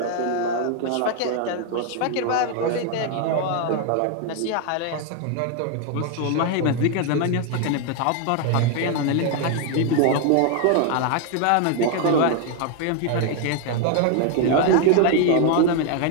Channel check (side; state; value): both; different; correlation 0.01